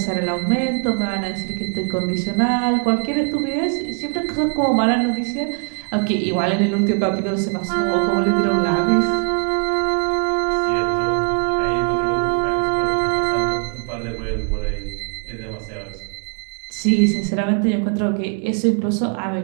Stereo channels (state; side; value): quieter; left; 39.2 dB